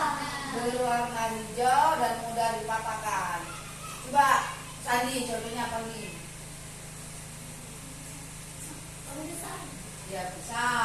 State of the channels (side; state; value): both; identical; correlation 1.00